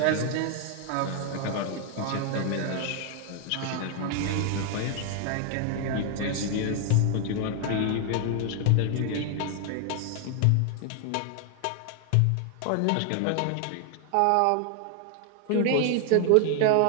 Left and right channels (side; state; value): both; different; correlation 0.00